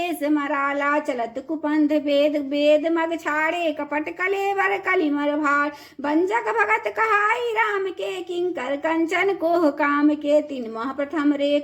मराला चलत कुपंथ वेद मग छाड़े कपट कलेवर कलिमर भार बंजक भगत कहाई राम के किंकर कंचन कोह काम के तीन माह प्रथम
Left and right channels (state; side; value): identical; both; correlation 1.00